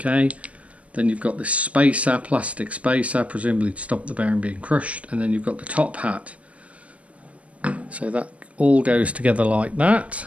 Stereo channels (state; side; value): late; left; 0.064 ms